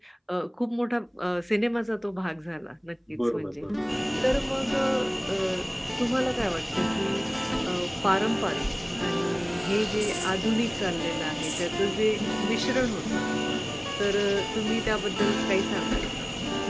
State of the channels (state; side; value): identical; both; correlation 1.00